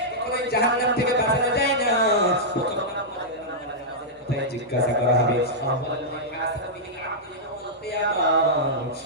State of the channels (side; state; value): both; normal; correlation -0.10